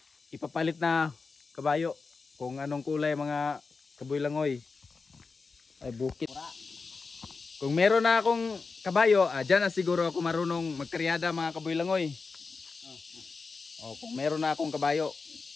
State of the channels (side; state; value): right; quieter; 4.4 dB